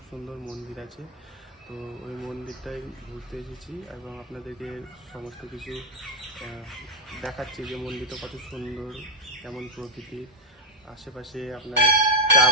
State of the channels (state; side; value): normal; both; correlation 0.00